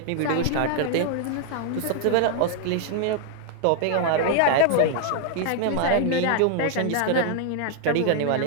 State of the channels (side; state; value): both; different; correlation 0.00